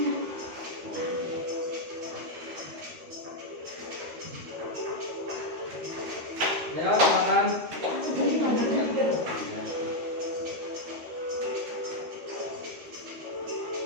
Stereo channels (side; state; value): left; late; 13 ms